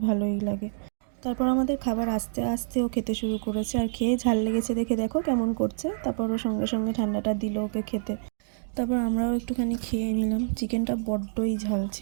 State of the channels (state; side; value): silent; left; digital silence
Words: ভালোই লাগে। তারপর আমাদের খাবার আসতে আসতে ও খেতে শুরু করেছে, আর খেয়ে ঝাল লেগেছে দেখে দেখো কেমন করছে। তারপর ও সঙ্গে সঙ্গে ঠান্ডাটা দিল ওকে খেতে। তারপর আমরাও একটুখানি খেয়ে নিলাম। চিকেনটা বড্ডই ঝাল